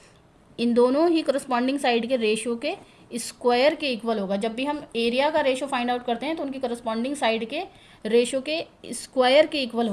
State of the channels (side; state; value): both; identical; correlation 1.00